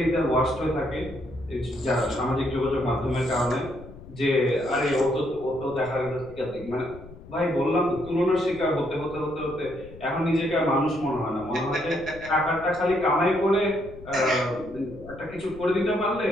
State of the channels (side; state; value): left; noise; rumble, 17 dB below the sound